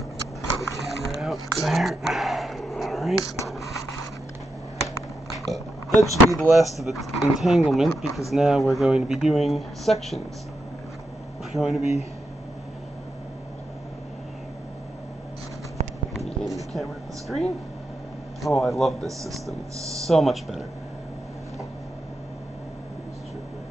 get the camera out there. Alright. That should be the last of the entanglement, because now we're going to be doing sections. We're going to be aiming the camera at the screen. Oh, I love this system. It's so much better.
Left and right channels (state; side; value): normal; both; correlation 0.85